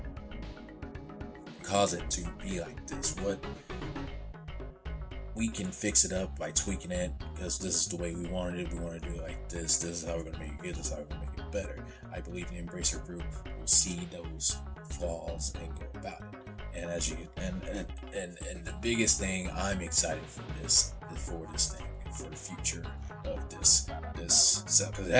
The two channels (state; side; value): identical; both; correlation 1.00